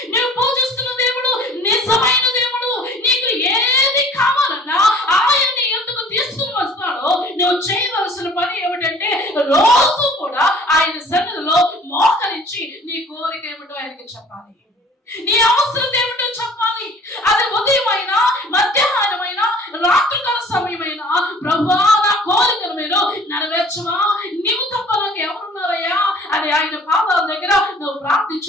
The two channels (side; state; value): both; normal; correlation 0.50